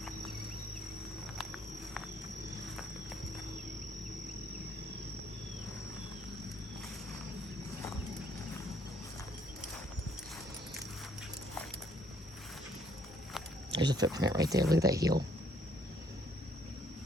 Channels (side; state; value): both; normal; correlation 0.65